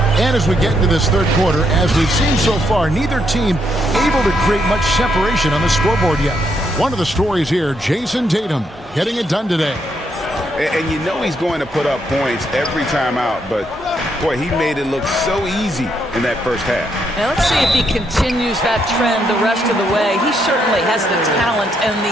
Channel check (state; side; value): normal; both; correlation 0.76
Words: And as we get into this third quarter, as we've seen so far, neither team able to create much separation on the scoreboard yet. One of the stories here, Jason Tatum getting it done today. And you know he's going to put up points every time out, but boy, he made it look so easy in that first half. Now let's see if he continues that trend the rest of the way. He certainly has the talent and the